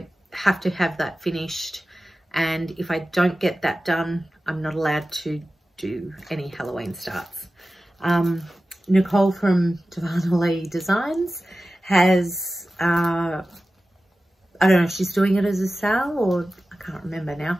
have to have that finished, and if I don't get that done, I'm not allowed to do any Halloween starts. Nicole from Darvanalee Designs has, I don't know if she's doing it as a sale, or I can't remember now,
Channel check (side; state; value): both; normal; correlation 0.95